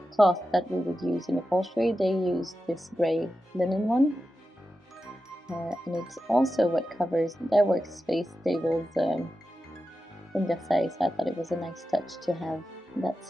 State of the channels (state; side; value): normal; both; correlation 0.91